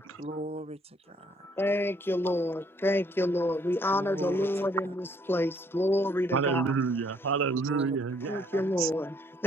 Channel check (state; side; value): normal; both; correlation 0.65